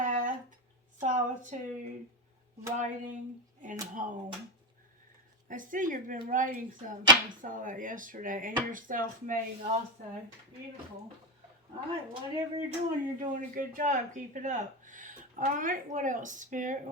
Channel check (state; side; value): normal; both; correlation 0.15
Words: solitude, writing, and home. I see you've been writing something. I saw that yesterday. And you're self-made also. Beautiful. Alright, whatever you're doing a good job. Keep it up. Alright, what else, Spirit?